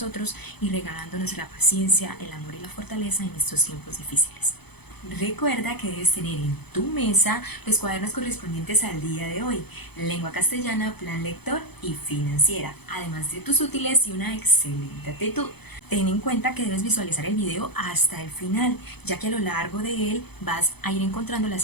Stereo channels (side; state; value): right; late; 0.98 ms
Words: y regalándonos la paciencia, el amor y la fortaleza en estos tiempos difíciles. Recuerda que debes tener en tu mesa los cuadernos correspondientes al día de hoy, lengua castellana, plan lector y financiera, además de tus útiles y una excelente actitud. Ten en cuenta que debes visualizar el video hasta el final, ya que a lo largo de él vas a ir encontrando